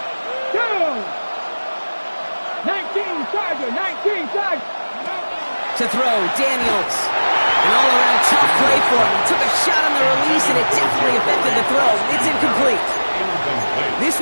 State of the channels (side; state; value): both; inverted; correlation -1.00